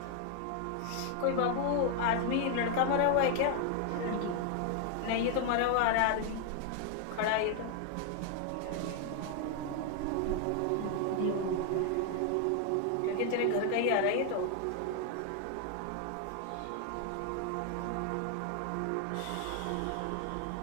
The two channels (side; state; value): both; different; correlation 0.00